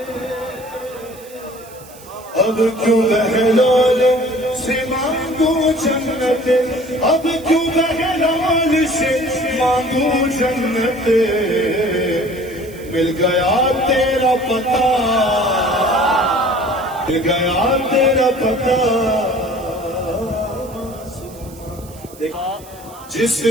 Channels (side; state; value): right; noise; hiss, 21 dB below the sound